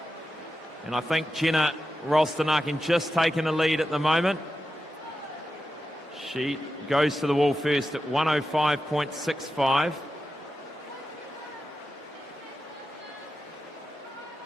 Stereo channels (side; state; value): both; normal; correlation 0.90